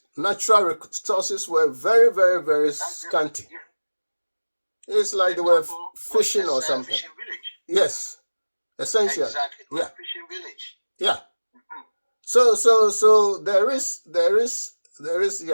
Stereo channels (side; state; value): both; inverted; correlation -1.00